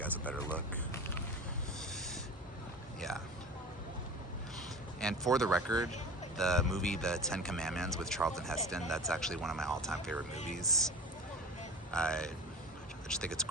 a better look. Yeah. And for the record, the movie The 10 Commandments with Charlton Heston, that's actually one of my all-time favorite movies. I just think it's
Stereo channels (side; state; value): both; normal; correlation 0.35